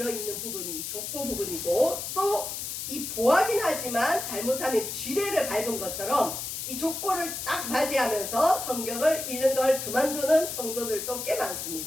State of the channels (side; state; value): left; noise; hiss, 5 dB below the sound